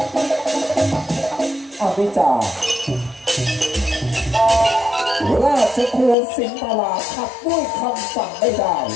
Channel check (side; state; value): right; drops out; at 6.2 s